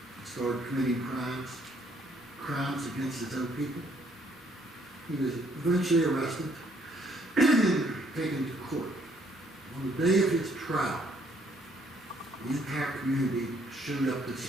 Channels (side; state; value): both; normal; correlation 0.66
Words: started committing crimes against his own people. He was eventually arrested and taken to court. On the day of his trial, the entire community showed up to